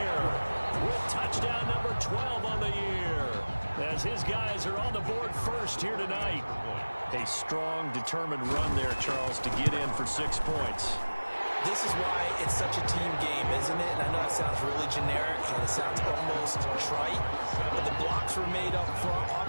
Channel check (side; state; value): both; inverted; correlation -1.00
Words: with touchdown number 12 on the year, as his guys are on the board first here tonight. A strong, determined run there, Charles, to get in for 6 points. This is why it's such a team game, isn't it? And I know it sounds really generic and it sounds almost trite, but the blocks were made up front,